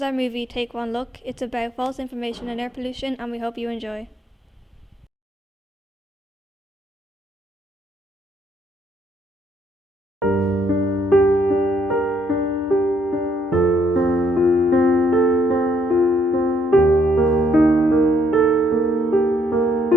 our movie Take One Look. It's about false information and air pollution and we hope you enjoy.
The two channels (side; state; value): both; normal; correlation 0.70